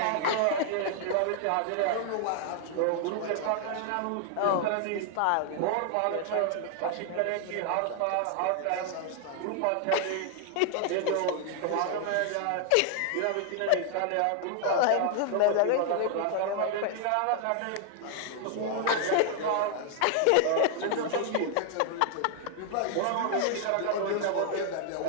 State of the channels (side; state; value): both; different; correlation 0.00